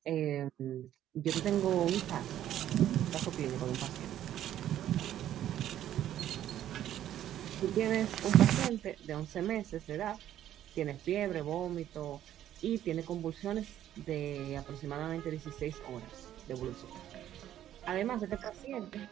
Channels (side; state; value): left; quieter; 11.7 dB